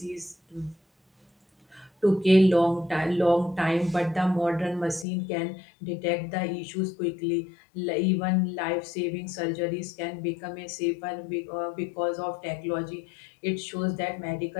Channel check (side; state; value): right; drops out; at 5.1 s